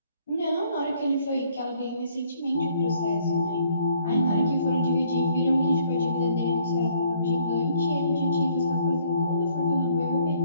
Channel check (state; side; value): inverted; both; correlation -0.63